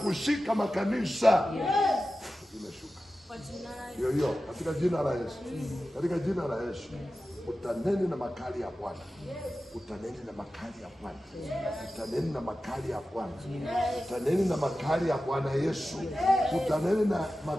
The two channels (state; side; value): normal; both; correlation 0.94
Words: makanisa. Imeshuka. Hiyo katika jina la Yesu. Katika jina la Yesu. Utaneni na makali ya Bwana. Utaneni na makali ya Bwana. Utaneni na makali ya Bwana. Utaneni na makali ya Bwana Yesu. Utaneni na